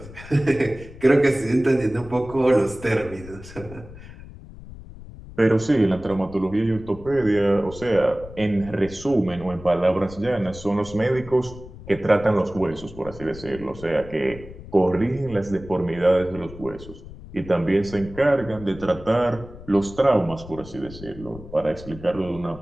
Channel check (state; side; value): noise; left; rumble, 16 dB below the sound